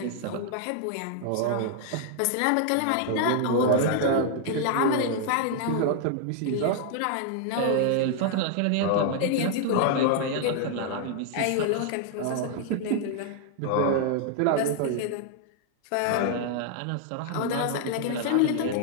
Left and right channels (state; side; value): different; both; correlation 0.00